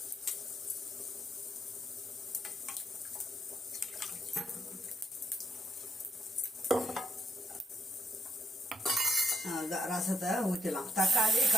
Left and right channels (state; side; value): normal; both; correlation 0.77